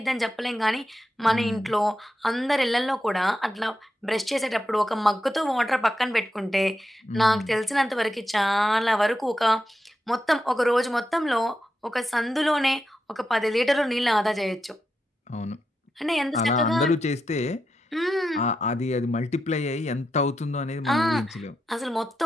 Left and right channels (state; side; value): normal; both; correlation 0.86